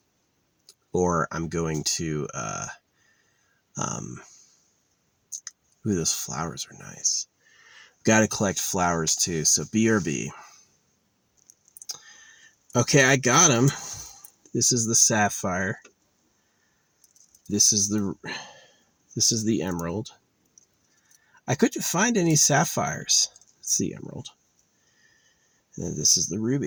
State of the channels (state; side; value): identical; both; correlation 1.00